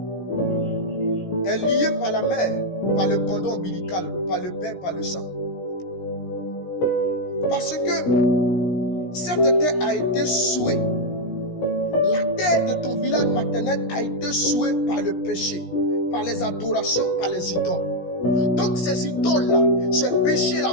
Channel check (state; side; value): late; right; 17 ms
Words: Est lié par la mère, par le cordon ombilical, par le père, par le sang. Parce que cette terre a été souillée. La terre de ton village maternel a été souillée par le péché, par les adorations, par les idoles. Donc ces idoles-là, ces péchés-là